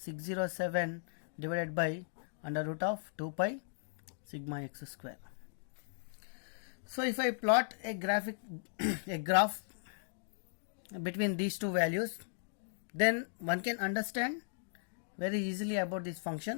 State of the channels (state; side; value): silent; right; digital silence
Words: divided by under root of 2 pi sigma x square. So if I plot a graph between these two values, then one can understand very easily about this